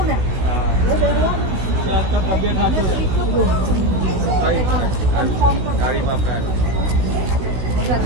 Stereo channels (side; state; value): left; late; 16 ms